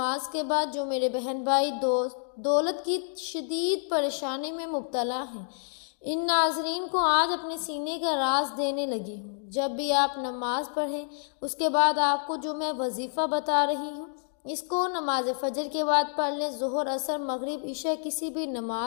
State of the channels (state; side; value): silent; right; digital silence